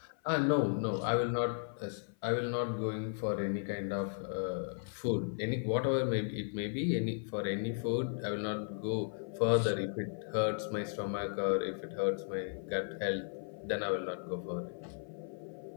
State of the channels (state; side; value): silent; right; 54 dB below the other